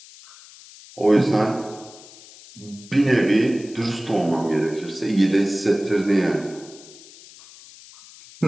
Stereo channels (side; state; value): left; noise; hiss, 21 dB below the sound